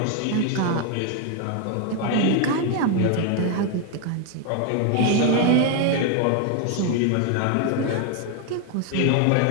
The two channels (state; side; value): different; both; correlation 0.01